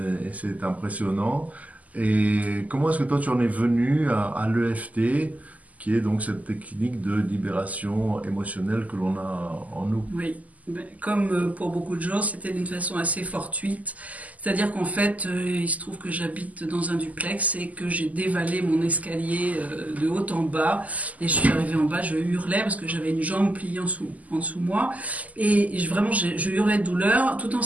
c'est impressionnant. Et comment est-ce que toi, tu en es venu à l'EFT, qui est donc cette technique de libération émotionnelle que l'on a en nous? Oui. Comme pour beaucoup de gens, c'était d'une façon assez fortuite. C'est-à-dire qu'en fait, il se trouve que j'habite dans un duplex et que j'ai dévalé mon escalier de haut en bas. Et je suis arrivée en bas, je hurlais parce que j'avais une jambe pliée en dessous moi. Et vraiment, je hurlais de douleur tout en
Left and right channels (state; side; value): late; left; 0.075 ms